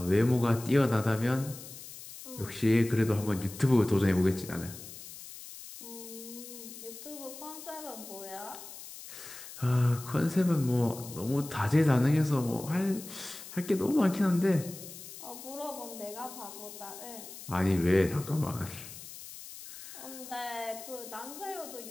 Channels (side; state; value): left; noise; hiss, 14 dB below the sound